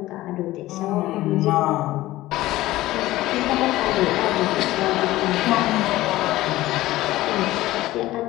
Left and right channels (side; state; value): right; quieter; 16.7 dB